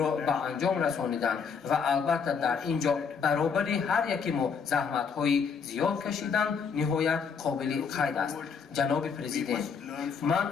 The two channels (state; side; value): quieter; right; 6.1 dB